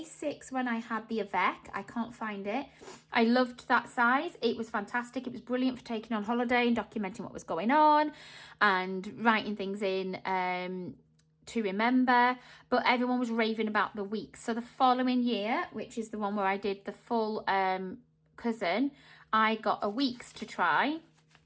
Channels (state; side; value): identical; both; correlation 1.00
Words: when I had the Avec. I can't find it. I loved that size. It was fantastic. It was brilliant for taking on holiday and documenting what was going on and writing things in to remember. But everyone was raving about the weeks. So the following year, which is the one where I did the full cousin, I got a weeks to try,